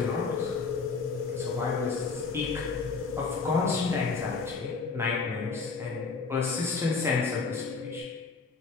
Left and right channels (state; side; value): quieter; right; 4.6 dB